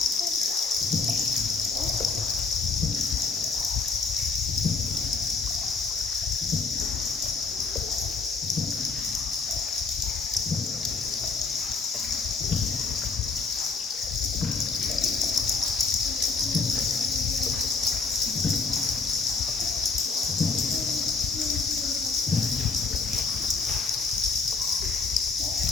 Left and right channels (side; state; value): right; quieter; 4.3 dB